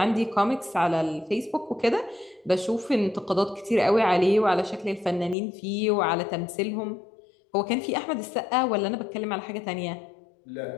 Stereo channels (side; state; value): right; drops out; at 5.4 s